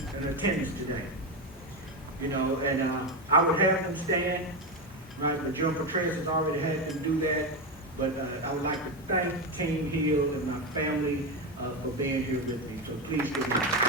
attendance today. You know, and I would have them stand, right, but John Petraeus has already had them do that, but I would like to thank Team Hill and my family for being here with me, so please give me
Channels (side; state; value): both; normal; correlation 0.13